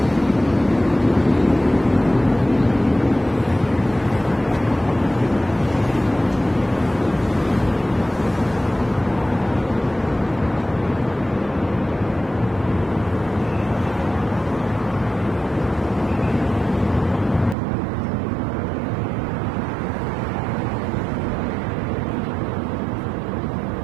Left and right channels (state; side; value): drops out; left; at 17.6 s